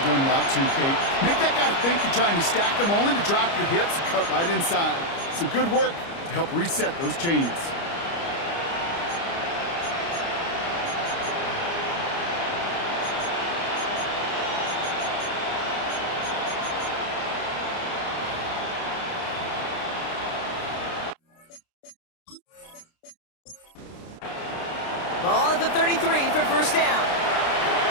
route too, Kate. Make that guy think you're trying to stack him only to drop your hips and cut right inside. Some good work to help reset those chains. Ball at the 33 for first down.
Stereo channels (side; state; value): right; late; 29 ms